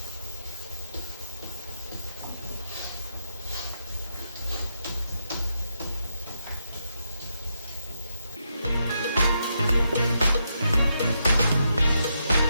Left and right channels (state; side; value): inverted; both; correlation -0.81